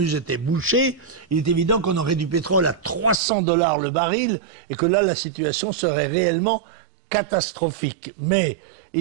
était bouché, il est évident qu'on aurait du pétrole à 300 $ le baril, et que là, la situation serait réellement catastrophique. Mais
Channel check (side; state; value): left; drops out; at 3.2 s